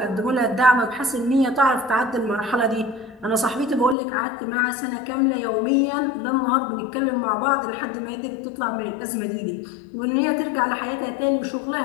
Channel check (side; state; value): right; drops out; at 4.0 s